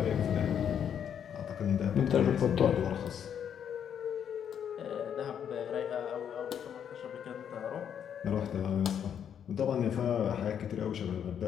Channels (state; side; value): quieter; right; 8.6 dB